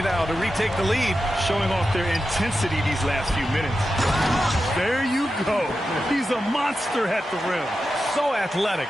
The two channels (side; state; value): both; normal; correlation 0.91